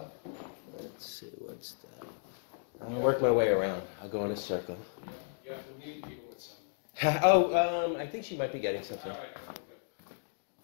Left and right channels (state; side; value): silent; right; digital silence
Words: Let's see, what's that? I'll work my way around. I'll go in a circle. Oh, I think she might be getting something.